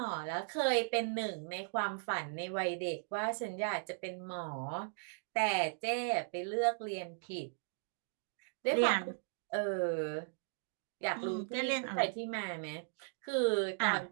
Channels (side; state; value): left; silent; digital silence